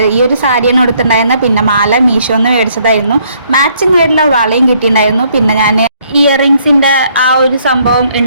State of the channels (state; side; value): inverted; both; correlation -0.67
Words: ഈ ഒരു സാരിയാണ് എടുത്തിട്ടുണ്ടായിരുന്നത്. പിന്നെ മാല മീഷോന്ന് മേടിച്ചതായിരുന്നു. മാച്ചിങ് ആയിട്ടുള്ള വളയും കിട്ടിയിട്ടുണ്ടായിരുന്നു. പിന്നെ ഞാൻ ഇയറിങ്സിൻ്റെ ആ ഒരു സംഭവം